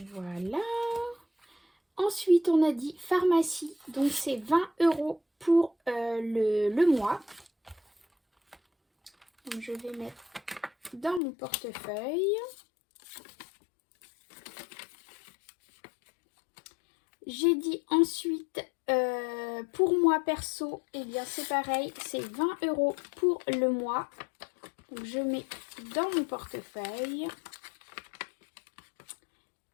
Voilà. Ensuite, on a dit pharmacie. Donc, c'est 20 € pour le mois. Donc, je vais mettre dans mon portefeuille. J'ai dit ensuite, pour moi perso, eh bien c'est pareil, c'est 20 € pour le mois. Donc je mets dans mon portefeuille.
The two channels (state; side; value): drops out; right; at 11.2 s